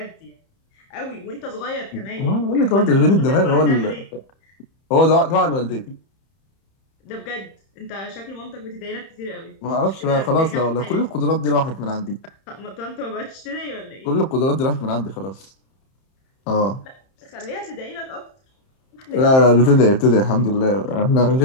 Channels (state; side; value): late; right; 31 ms